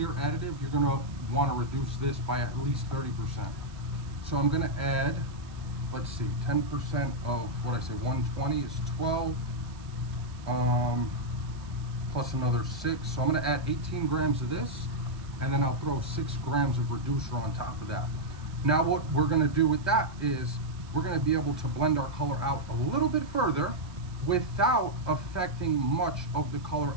additive, you're gonna wanna reduce this by at least 30%. So I'm gonna add, let's see, 10% of what I say, 120 is 12, plus another 6. So I'm gonna add 18 grams of this, and then I'll throw 6 grams of reducer on top of that. Now what we're gonna do with that is we're gonna be able to blend our color out a little bit further without affecting much of the color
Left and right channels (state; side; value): noise; right; hiss, 24 dB below the sound